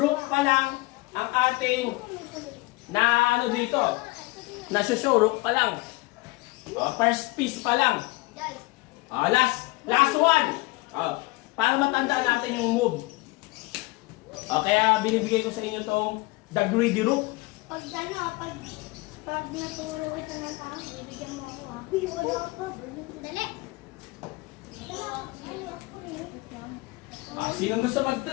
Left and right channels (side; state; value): right; quieter; 23.1 dB